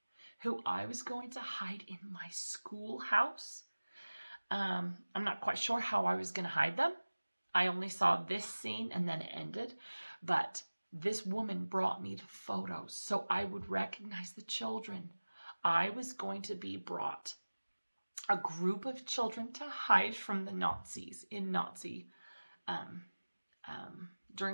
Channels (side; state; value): both; inverted; correlation -1.00